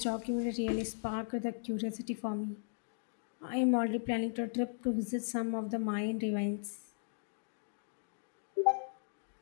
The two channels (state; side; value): silent; right; digital silence